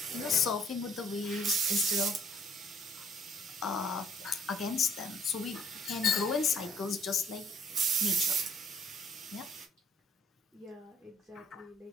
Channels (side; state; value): both; normal; correlation 0.61